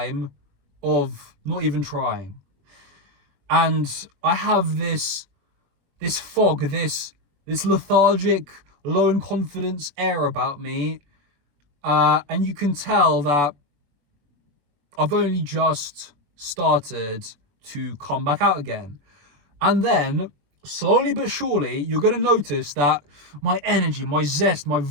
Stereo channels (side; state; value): left; late; 21 ms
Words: of not even trying. And I have this fog, this lethargic, low in confidence air about me. And you can tell that I've only just started to come back out again. And then, slowly but surely, you're going to notice that my energy, my zest, my